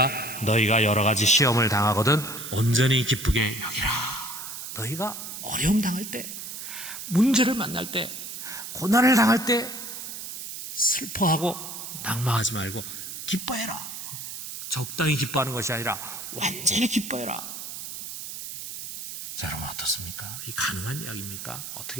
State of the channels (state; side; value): noise; right; hiss, 8 dB below the sound